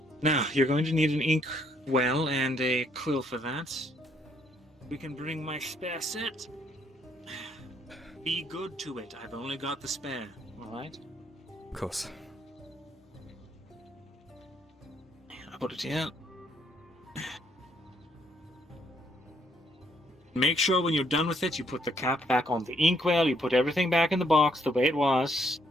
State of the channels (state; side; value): normal; both; correlation 0.70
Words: Now, you're going to need an ink well and a quill for that. We can bring my spare set. Be good to it. I've only got the spare, alright? Of course. I'll put it here. Make sure when you're done with it, you put the cap back on the inkwell, you put everything back in the box the way it was.